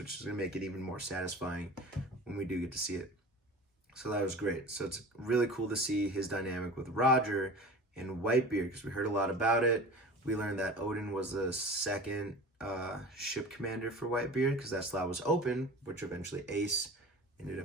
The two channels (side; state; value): both; normal; correlation 0.37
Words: is going to make it even more satisfying when we do get to see it. So that was great. So it's really cool to see his dynamic with Roger and Whitebeard, because we heard a lot about it. We learned that Odin was the second ship commander for Whitebeard, because that slot was open, which eventually Ace ended